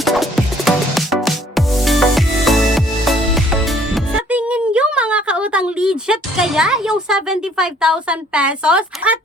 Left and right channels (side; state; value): both; normal; correlation 0.60